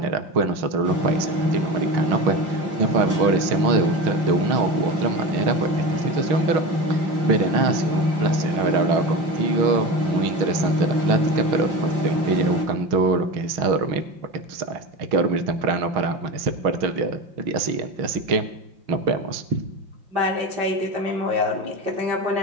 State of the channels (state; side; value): late; left; 5.7 ms